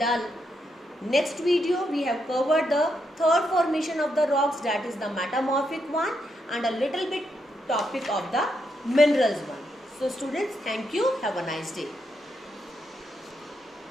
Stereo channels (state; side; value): normal; both; correlation 0.80